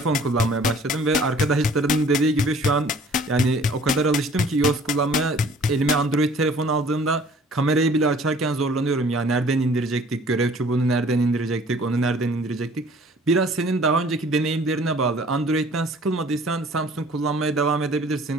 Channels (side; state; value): both; normal; correlation 0.53